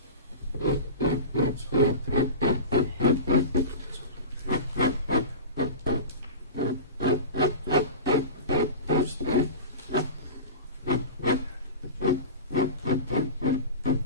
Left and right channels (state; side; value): inverted; both; correlation -0.30